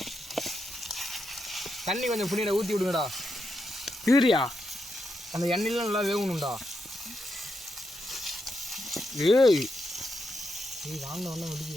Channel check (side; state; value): both; normal; correlation 0.83